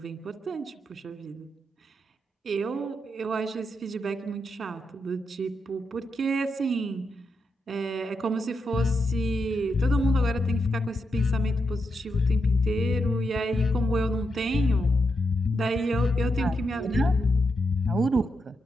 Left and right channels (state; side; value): normal; both; correlation 0.84